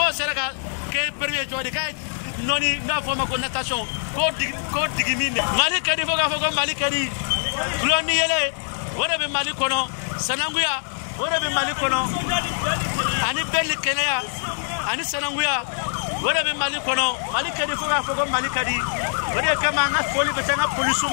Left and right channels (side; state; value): right; silent; digital silence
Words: seraka ke premier jodi kay noni na forma ko natation ko digiminde mali kadi foko mali kadi gloni yele wora be mali kono sananguya wora be mali kono ani belli kenaya ani sananguya wora be mali kono mali kadi foko mali kadi wora kama nga foli be tanga